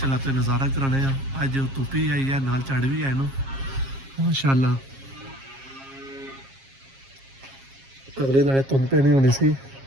तो नज़ारा कराने अज धुप्प ही आई है, नाल झड़ भी है ना माशाअल्लाह। अगले दिन धुंध पैनी होनी सी,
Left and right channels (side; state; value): left; late; 7.4 ms